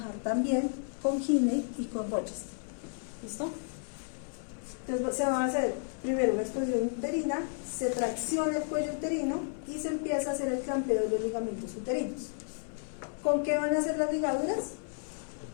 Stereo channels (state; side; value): silent; right; digital silence